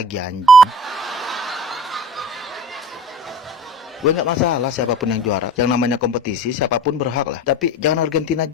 anjing. Gue nggak masalah siapapun yang juara. Yang namanya kompetisi siapapun berhak lah. Tapi jangan Argentina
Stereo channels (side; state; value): both; normal; correlation 0.41